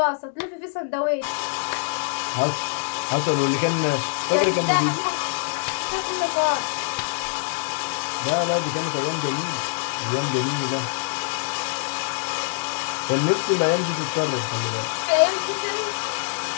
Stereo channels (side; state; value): right; silent; digital silence